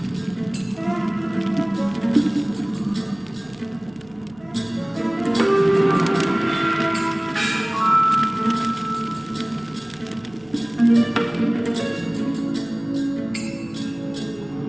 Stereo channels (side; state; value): right; noise; hum, 27 dB below the sound